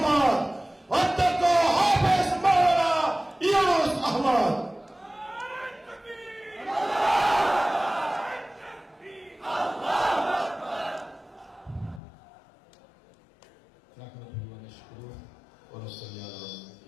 অধ্যক্ষ হাফেজ মাওলানা ইউনুস আহমদ। نحمده ونشكره ونصلي على رسوله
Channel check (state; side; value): drops out; right; at 12.0 s